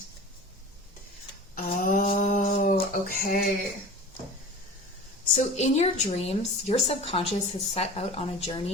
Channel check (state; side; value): normal; both; correlation 0.37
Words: Oh, okay. So in your dreams, your subconscious has set out on a